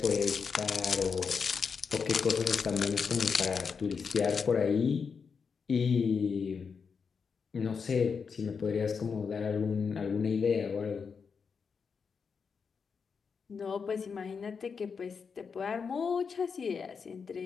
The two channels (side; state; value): right; quieter; 5.8 dB